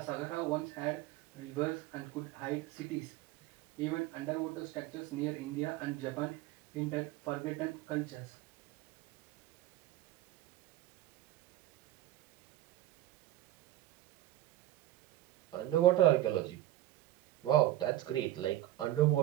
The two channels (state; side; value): quieter; left; 14.5 dB